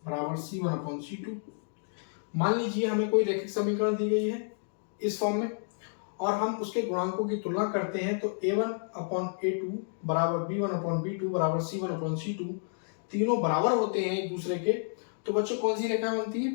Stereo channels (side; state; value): right; silent; digital silence